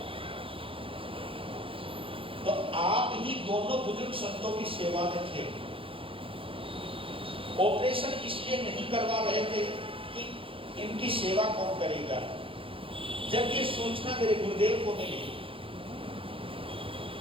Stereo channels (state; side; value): late; left; 0.26 ms